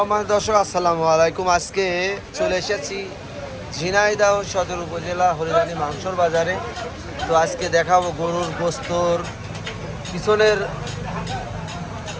দর্শক, আসসালামু আলাইকুম। আজকে চলে এসেছি ঝিনাইদহ সদর উপজেলা হরিদানি মাংসর বাজারে। তো আজকে দেখাবো গরুর গোস্তর পিছনের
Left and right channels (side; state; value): both; identical; correlation 1.00